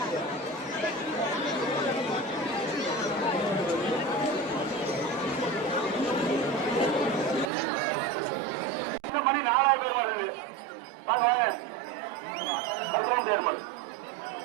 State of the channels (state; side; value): drops out; left; at 7.5 s